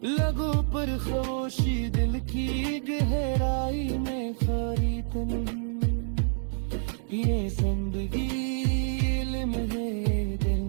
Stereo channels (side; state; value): left; silent; digital silence